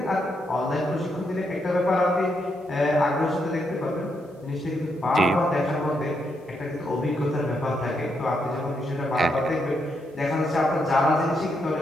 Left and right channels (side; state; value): both; normal; correlation 0.79